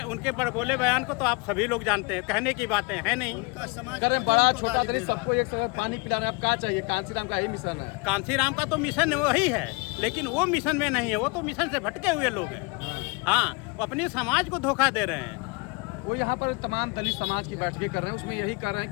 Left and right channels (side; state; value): right; quieter; 29.3 dB